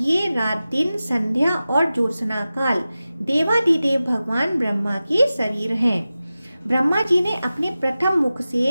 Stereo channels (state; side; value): inverted; both; correlation -0.95